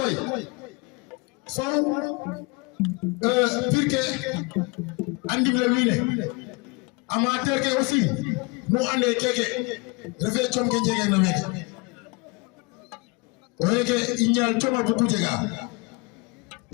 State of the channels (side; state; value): right; quieter; 28.5 dB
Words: faw pirke andim le winé amateur ke aussi no ande keke refe chom ke jege na meke oyeke inyal choma buku jega